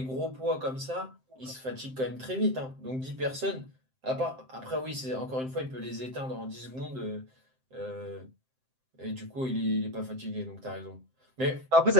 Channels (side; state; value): left; late; 7.7 ms